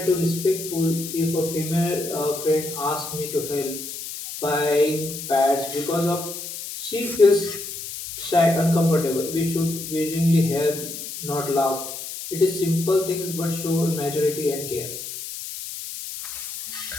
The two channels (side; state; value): left; noise; hiss, 8 dB below the sound